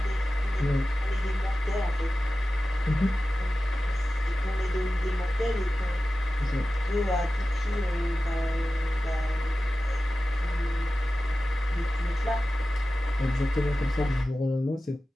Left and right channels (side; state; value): both; normal; correlation 0.95